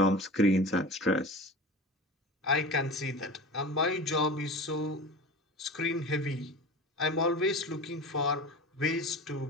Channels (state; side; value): normal; both; correlation 0.33